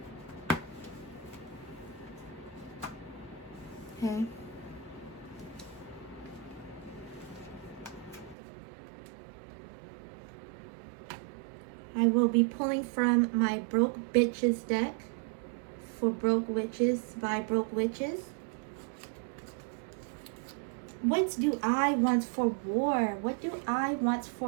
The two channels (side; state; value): left; drops out; at 8.3 s